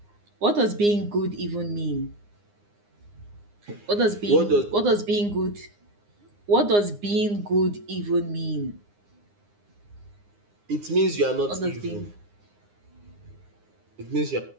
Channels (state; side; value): late; left; 9.7 ms